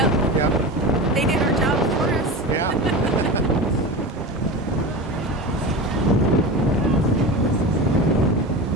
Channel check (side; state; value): both; normal; correlation 0.28